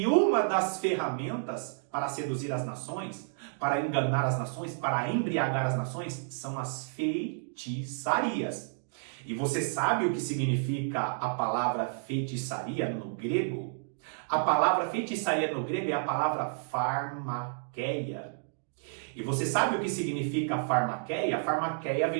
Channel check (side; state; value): left; silent; digital silence